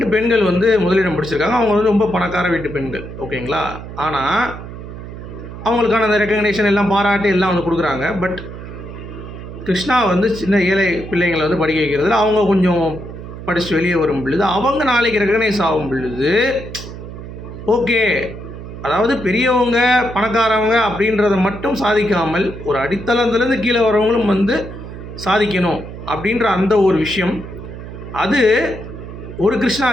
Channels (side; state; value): right; noise; hum, 11 dB below the sound